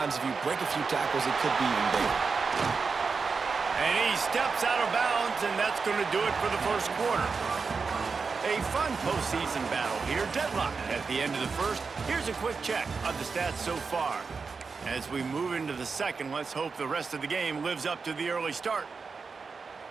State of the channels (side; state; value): left; quieter; 4.9 dB